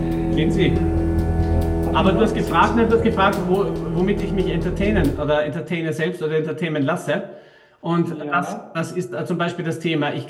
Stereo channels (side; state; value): both; identical; correlation 1.00